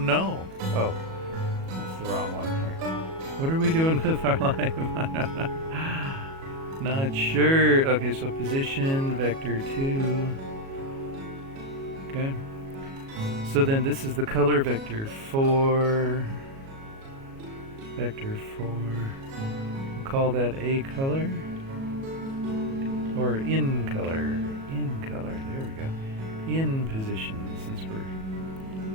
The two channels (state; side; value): late; left; 37 ms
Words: know. Oh, that's the wrong one here. What are we doing with our life? I don't know. Not sure. Okay, so position, vector 2. Okay. So then this is the color vector 4. Vector 4. We'll call that A color. Or in color. In color. There we go. In position, since we're